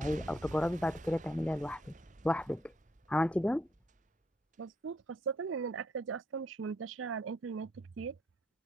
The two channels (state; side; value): normal; both; correlation 0.73